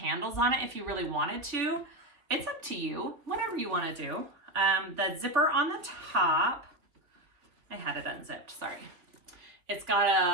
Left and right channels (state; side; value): late; left; 3.2 ms